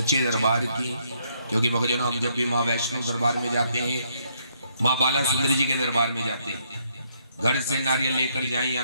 दरबार की। क्योंकि भक्तजनों हम जब भी माँ वैष्णो दरबार में जाते हैं, माँ बाला सुंदरी जी के दरबार में जाते हैं, घर से नारियल लेकर जाएं या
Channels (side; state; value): both; inverted; correlation -0.71